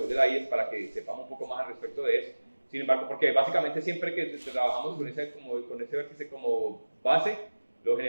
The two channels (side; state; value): both; inverted; correlation -1.00